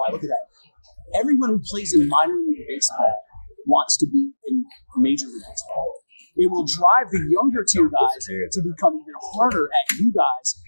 I look at that. Everyone who plays in minor league baseball wants to be in major league baseball. It will drive the younger tier guys to become even harder at you guys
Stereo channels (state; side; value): inverted; both; correlation -1.00